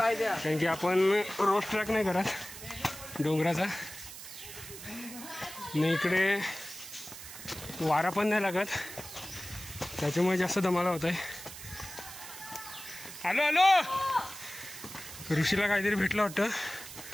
की आपण रोड ट्रॅक नाही करत डोंगराचा, नाही इकडे वारा पण नाही लागत, त्याच्यामुळे जास्त दमाला होत आहे. आलो आलो. ऋषीला काहीतरी भेटलं वाटतं,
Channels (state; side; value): noise; right; hiss, 13 dB below the sound